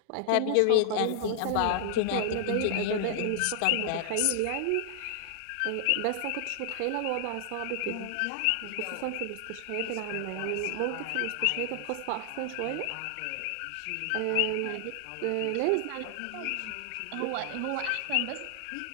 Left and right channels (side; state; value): both; different; correlation 0.00